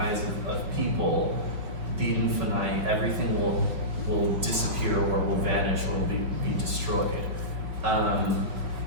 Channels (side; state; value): left; late; 5.1 ms